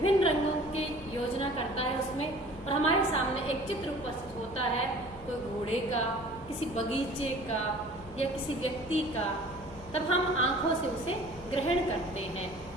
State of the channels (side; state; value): left; noise; hum, 18 dB below the sound